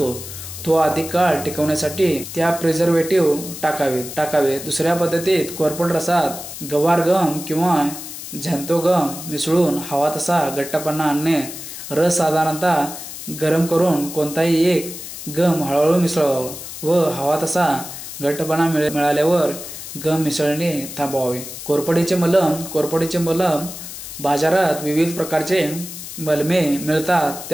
तो अधिक काळ टिकवण्यासाठी त्या प्रिझर्वेटिव्ह टाकावे. दुसऱ्या पद्धतीत कोरफड रसात गवार गम किंवा झॅन्थो गम मिसळून हवा तसा घट्टपणा आणणे. रस साधारणतः गरम करून कोणताही एक गम हळूहळू मिसळावा व हवा तसा घट्टपणा मिळाल्यावर गम मिसळणे थांबवावे. कोरफडीचे मलम बाजारात विविध प्रकारचे मलमे मिळतात.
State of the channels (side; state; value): left; noise; hiss, 10 dB below the sound